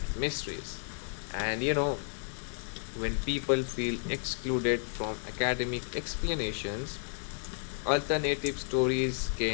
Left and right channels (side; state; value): right; silent; 56 dB below the other